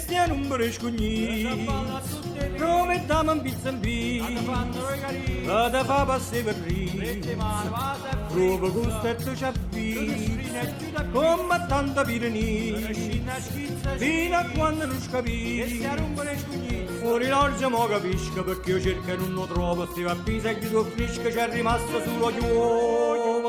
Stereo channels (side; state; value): both; identical; correlation 1.00